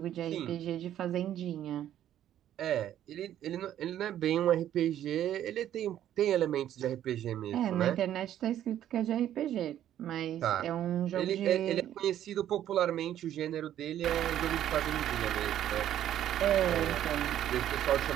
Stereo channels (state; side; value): quieter; left; 11.4 dB